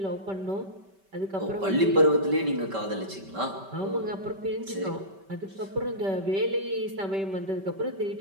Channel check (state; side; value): late; left; 5.2 ms